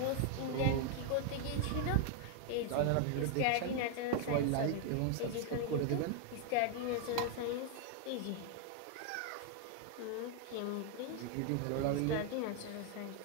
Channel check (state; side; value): different; both; correlation 0.00